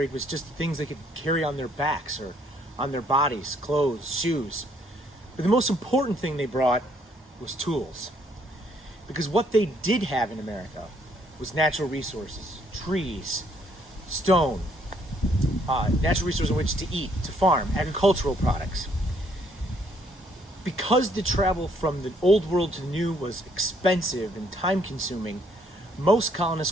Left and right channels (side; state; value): both; normal; correlation 0.68